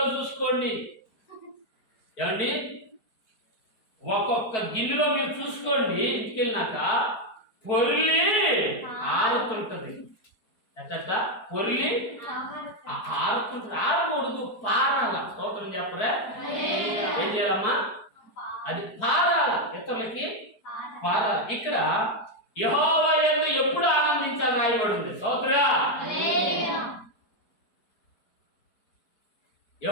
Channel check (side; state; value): right; late; 4.6 ms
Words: చూసుకోండి ఏమండి, ఒక్కొక్క గిన్నెలో మీరు చూసుకోండి. ఇంటికి వెళ్ళినాక పొర్లి ఆరుతుంటది. ఎట్ట పొర్లి ఆరుతుంటది. ఆరకూడదు, పారాల. స్తోత్రం చెప్పరా? ఏం చేయాలమ్మా? అది పారాల, ఇతరులకి పారాల. ఇక్కడ యెహోవా యందు ఎప్పుడు ఆనందించాలి రాయబడింది. స్తోత్రా.